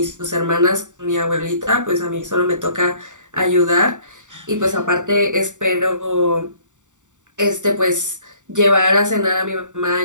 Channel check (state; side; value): late; left; 0.86 ms